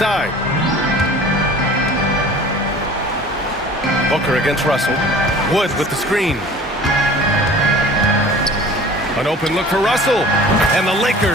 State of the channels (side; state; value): both; normal; correlation 0.44